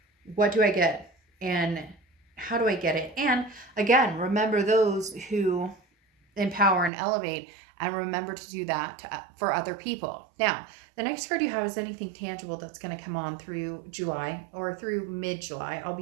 what do I get, and how do I get it? And again, remember those who empower and elevate, and remember to do that for other people. Now, the next card you have is anything tangible that's going to come on through July or through mid-July. I'll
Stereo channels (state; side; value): drops out; left; at 6.9 s